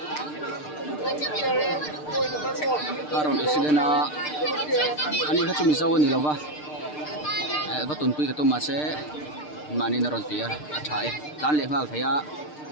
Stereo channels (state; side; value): late; right; 6.6 ms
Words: aron accident a ani kha chumi zaw ni lova va tun pui ka to ma se mani na ron tia a thai tan le ngal thaya